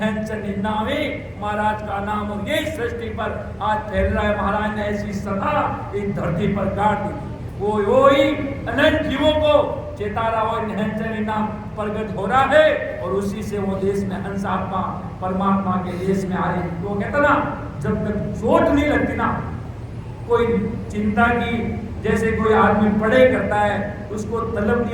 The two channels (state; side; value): identical; both; correlation 1.00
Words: नाम ही महाराज का नाम और यही सृष्टि पर आज फैल रहा है। महाराज ने ऐसी सदा इस धरती पर काट दी, वो ही अनंत जीवों को चेता रहा हो नैनचंद नाम प्रगट हो रहा है और उसी से वो देश में हंस आत्मा परमात्मा के देश में आ रही। तो कहता ना जब तक चोट नहीं लगती ना, कोई चिंता की जैसे कोई आदमी पढ़े करता है उसको तलब